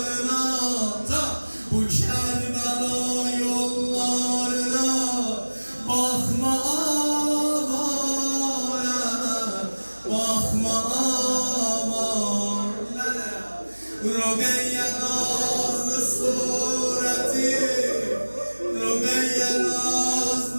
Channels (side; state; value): both; inverted; correlation -1.00